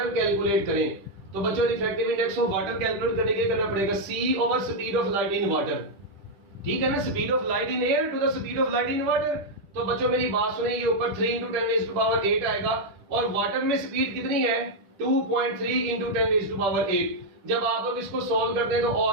calculate करें, तो बच्चों refractive index of water calculate करने के लिए करना पड़ेगा C over speed of light in water, ठीक है ना, speed of light in air to the speed of light in water. तो बच्चों मेरी बात सुनिए, ये ऊपर 3 इंटू 10⁸ आएगा, और वाटर में स्पीड कितनी है 2.3 इंटू 10⁸। जब आप लोग इसको सॉल्व करते हैं तो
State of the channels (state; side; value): late; left; 10 ms